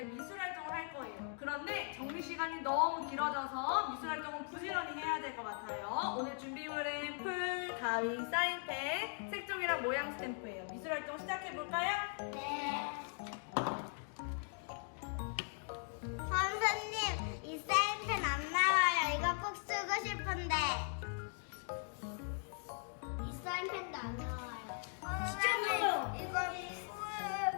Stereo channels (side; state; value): right; silent; 51 dB below the other